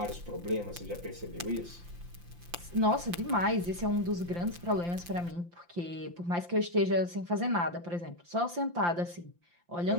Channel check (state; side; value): late; left; 5.8 ms